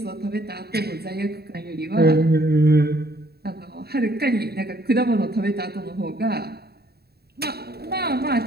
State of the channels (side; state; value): left; late; 0.46 ms